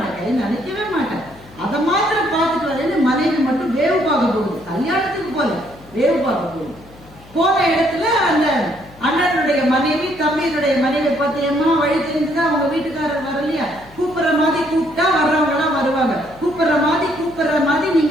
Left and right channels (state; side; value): noise; left; hum, 23 dB below the sound